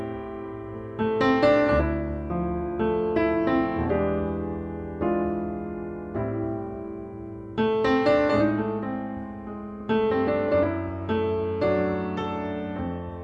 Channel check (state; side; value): identical; both; correlation 1.00